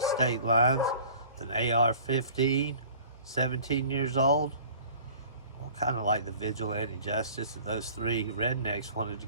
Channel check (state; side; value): inverted; both; correlation -0.47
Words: state lines with an AR-15, 17 years old. Well, kind of like the vigilante justice of those three rednecks wanted to